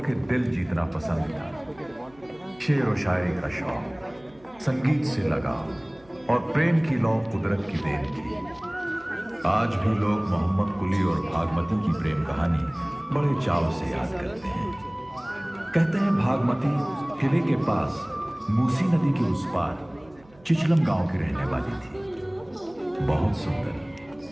के दिल जीतना पसंद था। शेर व शायरी का शौक, संगीत से लगाव और प्रेम की लौ कुदरत की देन थी। आज भी लोग मोहम्मद कुली और भागमती की प्रेम कहानी बड़े चाव से याद करते हैं। कहते हैं भागमती किले के पास मूसी नदी के उस पार चिचलम गांव की रहने वाली थी, बहुत सुंदर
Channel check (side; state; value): right; noise; hum, 27 dB below the sound